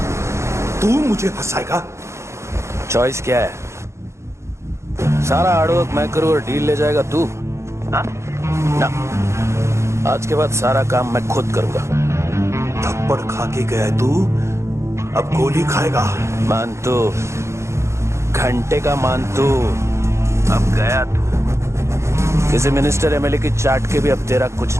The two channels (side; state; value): left; late; 0.14 ms